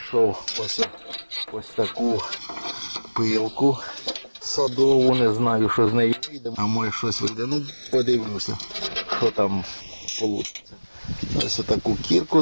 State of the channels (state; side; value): inverted; both; correlation -1.00